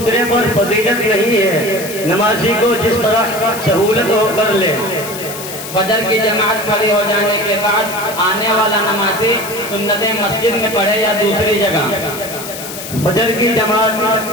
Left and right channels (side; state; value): left; noise; hiss, 10 dB below the sound